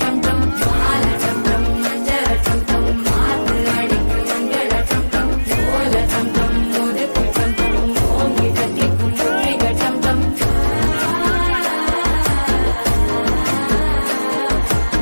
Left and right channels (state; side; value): inverted; both; correlation -1.00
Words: டம் டம் மால டம் டம் மஞ்சள டம் டம் மாத்து அடிக்கு மங்கள டம் டம் ஓல டம் டம் ஒதுக்கு டம் டம் ஓங்கி தட்டிக்கும் முத்திக டம் டம்